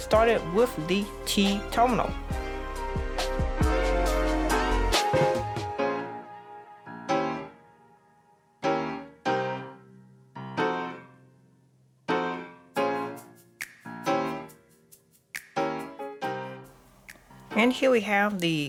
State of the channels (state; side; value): identical; both; correlation 1.00